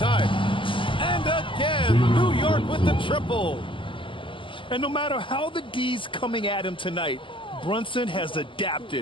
And again, New York with the triple. And no matter how the D's coming at him tonight, Brunson has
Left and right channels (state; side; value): late; right; 0.25 ms